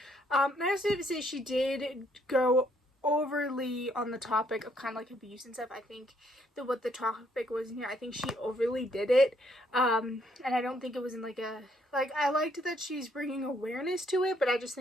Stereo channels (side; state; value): both; normal; correlation 0.69